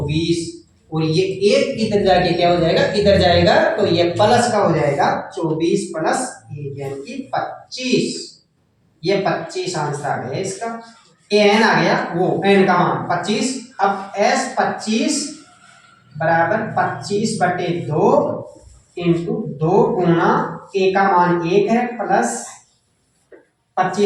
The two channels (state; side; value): identical; both; correlation 1.00